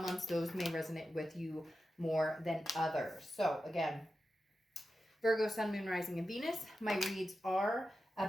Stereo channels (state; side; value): normal; both; correlation 0.91